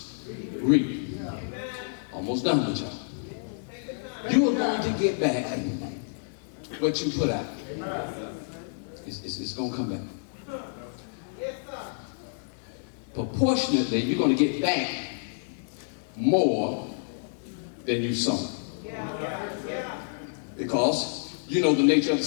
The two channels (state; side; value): silent; right; digital silence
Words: reap. Almost done with y'all. You are going to get back what you put out. It's going to come back. Proportionately, you're going to get back more than you sown. Because you know the nature of the